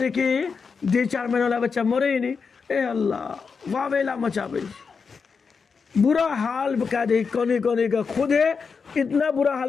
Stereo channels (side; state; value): right; quieter; 5.4 dB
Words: کی 2-4 مہینے والا بچہ مرے ہی نہیں، اے اللہ واویلا مچا بھائی، برا حال بکا دے، کونے کونے کا خود ہے، اتنا برا